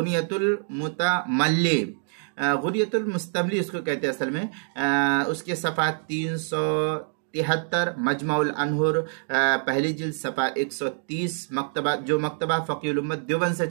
المتملی، غنیۃ المستملی اس کو کہتے ہیں اصل میں، اس کے صفحہ 373، مجمع الانہر پہلی جلد صفحہ 130، مکتبہ جو مکتبہ فقیہ الامت دیوبند سے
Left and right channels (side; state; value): left; silent; 61 dB below the other